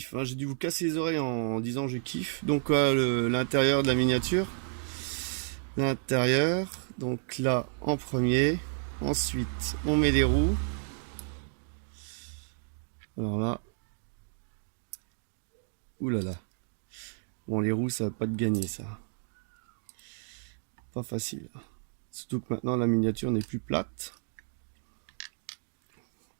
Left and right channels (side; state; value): left; silent; digital silence